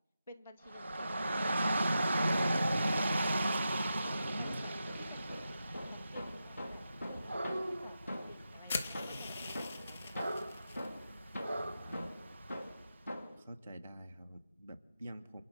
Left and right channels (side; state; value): both; inverted; correlation -0.89